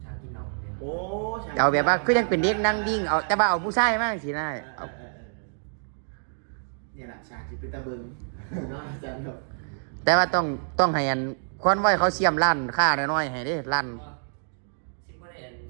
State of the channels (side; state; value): left; silent; digital silence